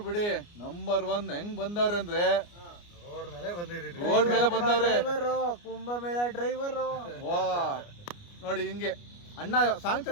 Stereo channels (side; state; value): right; late; 29 ms